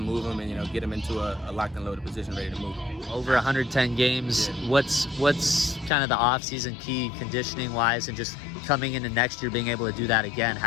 them and get them into a locked and loaded position, ready to move. Over 110 games. Yeah. What's kind of the off-season key conditioning wise, and just coming into next year being able to do that again?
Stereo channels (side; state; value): right; drops out; at 5.9 s